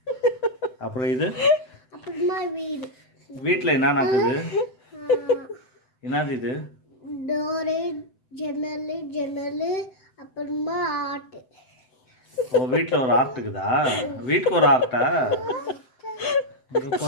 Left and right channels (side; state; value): right; late; 7.9 ms